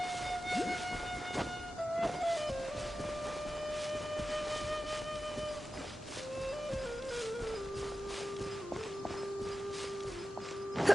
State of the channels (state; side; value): normal; both; correlation 0.93